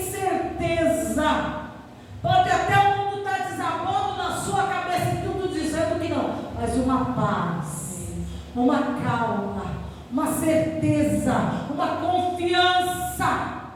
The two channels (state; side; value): identical; both; correlation 1.00